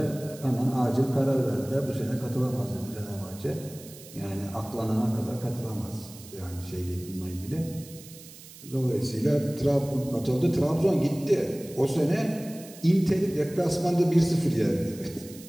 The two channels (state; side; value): noise; right; hiss, 18 dB below the sound